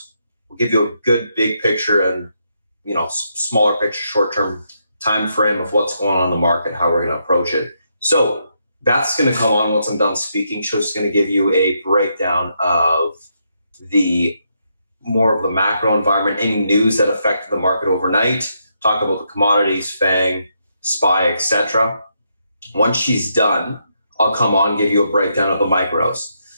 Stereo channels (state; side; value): inverted; both; correlation -0.79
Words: We'll give you a good big picture and, smaller picture, short-term time frame of what's going on in the market, how we're going to approach it. So Beth's going to come on once I'm done speaking. She's going to give you a breakdown of more of the macro environment, any news that affected the market overnight, talk about the commodities, Fang, SPY, etc. Once she's done, I'll come on, give you a breakdown of the micros.